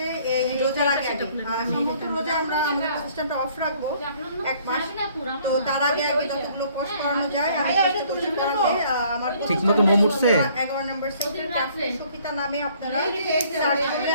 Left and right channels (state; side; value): inverted; both; correlation -0.59